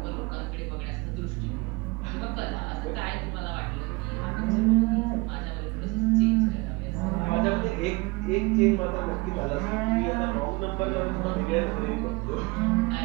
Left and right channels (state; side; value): quieter; left; 25.0 dB